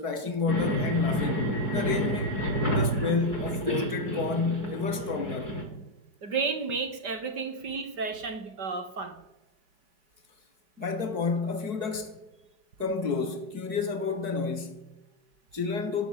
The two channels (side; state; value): left; late; 4.6 ms